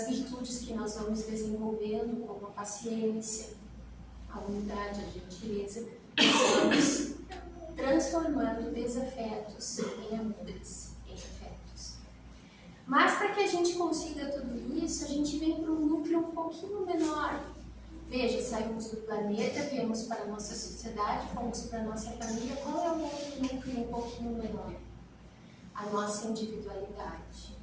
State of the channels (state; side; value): identical; both; correlation 1.00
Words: virtudes que nós vamos desenvolvendo, como a paciência, a humildade, a gentileza, nós vamos transformando desafetos em amores, em afetos. Mas para que a gente consiga tudo isso, a gente vem para um núcleo um pouquinho menor. Veja, saímos do planeta, viemos para a nossa sociedade, fomos para a nossa família. Qual é o outro núcleo um pouquinho menor? A nossa individualidade.